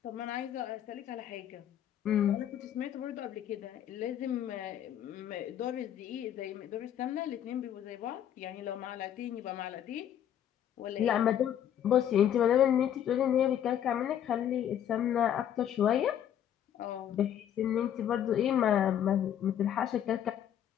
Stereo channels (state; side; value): quieter; right; 10.2 dB